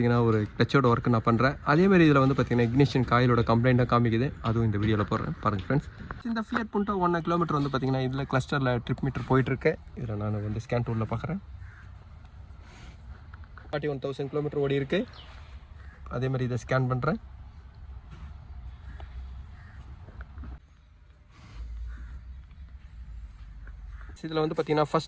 ஒரு கிளச்சோட ஒர்க்கு நான் பண்ணுறேன். அதேமாதிரி இதில் வந்து பார்த்தீங்கன்னா இக்னிஷன் காயிலோட கம்ப்ளைண்ட்டாக காமிக்குது. அதுவும் இந்த வீடியோவில் போடுறேன் பாருங்கள் ஃப்ரெண்ட்ஸ். இந்த ஃபியட் புண்டோ 1 கிலோமீட்டர் வந்து பார்த்தீங்கன்னா இதில் கிளஸ்டரில் ட்ரிப் மீட்டர் போயிட்டுருக்கு. இதில் நான் வந்து ஸ்கேன் டூலில் பார்க்குறேன். 41,000 கிலோமீட்டர் ஓடி இருக்குது. அதேமாதிரி இதை ஸ்கேன் பண்ணுறேன். இதில் வந்து பார்த்தீங்கன்னா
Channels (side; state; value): both; identical; correlation 1.00